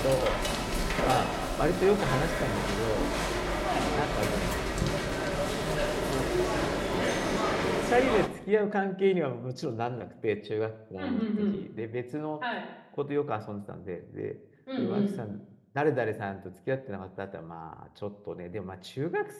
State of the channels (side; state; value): both; identical; correlation 1.00